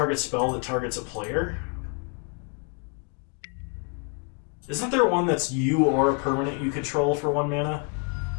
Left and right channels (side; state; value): right; quieter; 35.4 dB